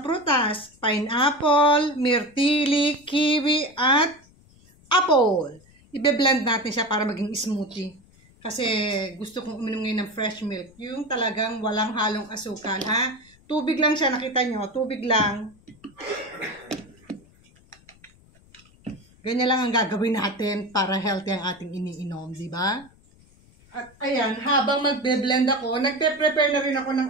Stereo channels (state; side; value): noise; left; rumble, 28 dB below the sound